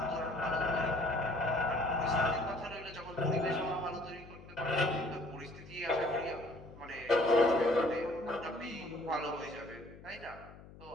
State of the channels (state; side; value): noise; left; hum, 19 dB below the sound